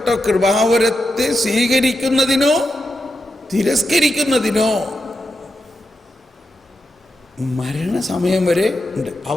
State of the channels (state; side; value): normal; both; correlation 0.87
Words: കൃപാവരത്തെ സ്വീകരിക്കുന്നതിനോ തിരസ്കരിക്കുന്നതിനോ മരണസമയം വരെ ഉണ്ട്.